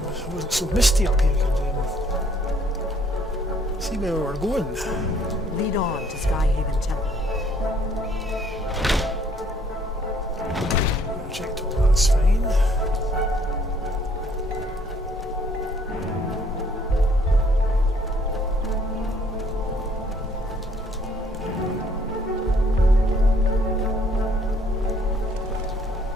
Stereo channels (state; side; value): normal; both; correlation 0.63